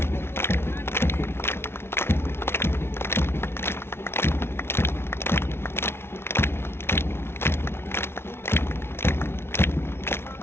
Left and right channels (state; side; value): late; right; 0.12 ms